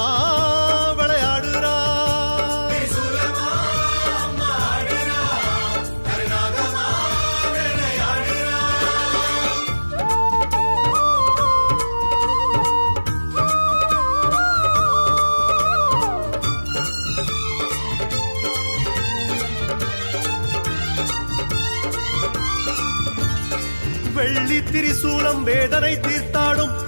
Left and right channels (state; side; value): inverted; both; correlation -1.00